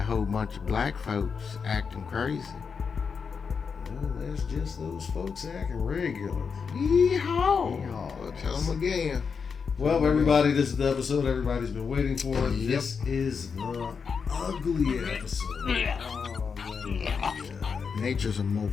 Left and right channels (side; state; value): right; quieter; 5.8 dB